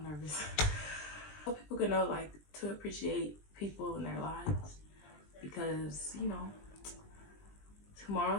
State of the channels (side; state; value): right; late; 20 ms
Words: nervous. So people can know, like, to appreciate people in their lives, because you know,